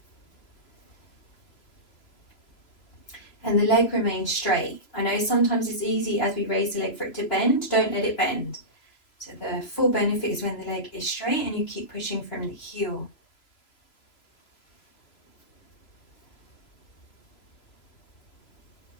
And the leg remains straight. I know sometimes it's easy as we raise the leg for it to bend. Don't let it bend. So the full benefit is when the leg is straight and you keep pushing from the heel.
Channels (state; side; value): late; right; 3.0 ms